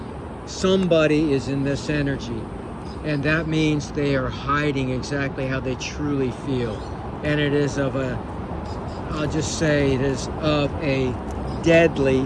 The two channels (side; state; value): both; identical; correlation 1.00